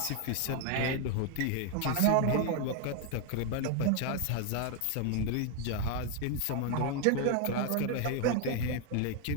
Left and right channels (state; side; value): different; both; correlation 0.01